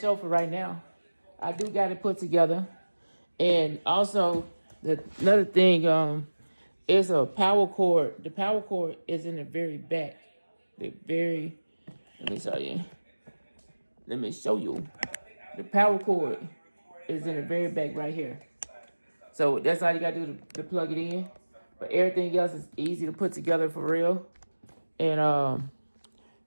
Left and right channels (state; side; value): inverted; both; correlation -1.00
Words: for right now. I do got it put together. And also, another thing, is a power cord. The power cord is in the very back. Let me show you. The power cord is in the very back right here. So that's all you gotta do to plug it in. But everything else is easy to put together for real. And